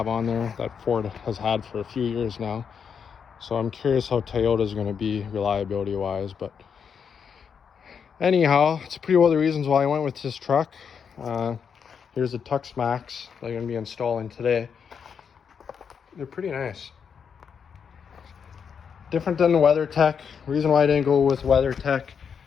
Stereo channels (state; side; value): quieter; right; 6.8 dB